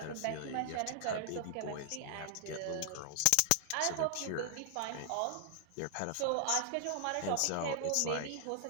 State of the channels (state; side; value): different; both; correlation 0.00